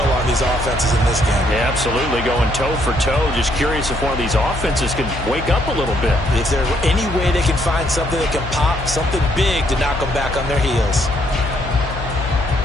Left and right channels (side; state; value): left; noise; hum, 8 dB below the sound